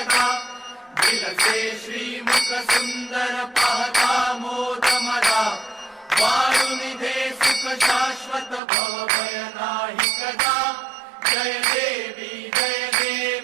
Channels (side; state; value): left; drops out; at 8.6 s